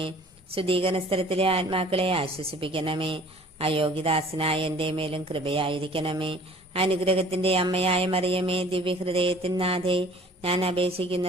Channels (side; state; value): both; normal; correlation 0.51